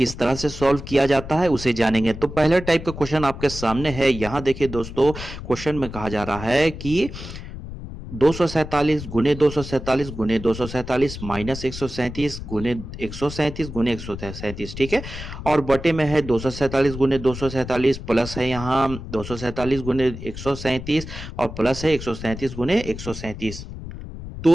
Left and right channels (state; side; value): noise; left; rumble, 10 dB below the sound